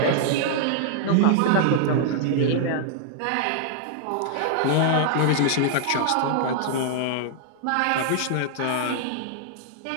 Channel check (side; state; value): both; different; correlation -0.01